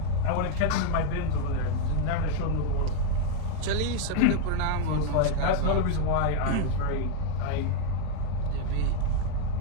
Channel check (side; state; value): both; different; correlation 0.00